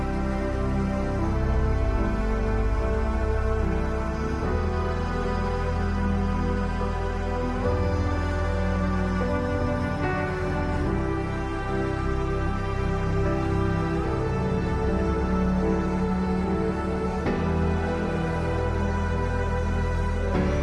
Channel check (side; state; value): both; identical; correlation 1.00